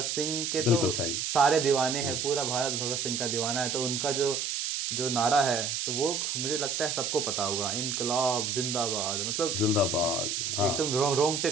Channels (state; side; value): noise; right; hiss, 1 dB below the sound